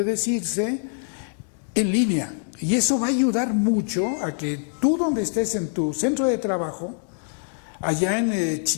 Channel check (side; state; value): right; silent; 62 dB below the other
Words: decirse, en línea. Y eso va a ayudar mucho a que tú, donde estés en tu centro de trabajo, allá en